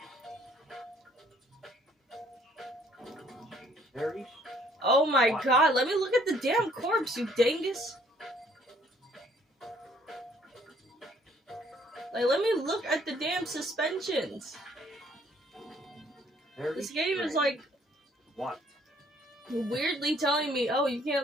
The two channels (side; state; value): both; normal; correlation 0.62